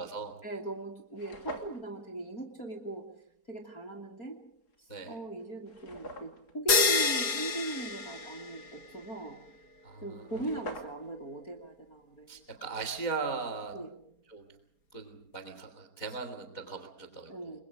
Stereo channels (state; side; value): late; right; 4.3 ms